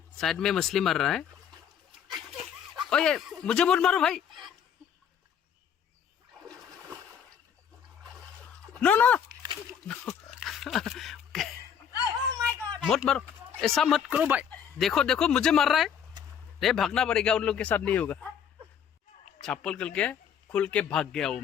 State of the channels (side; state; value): right; quieter; 8.2 dB